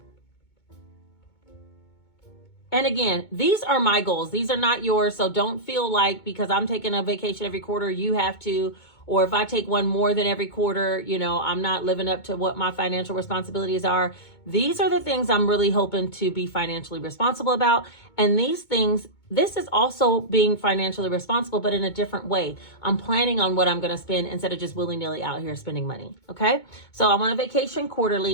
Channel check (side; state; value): right; late; 2.2 ms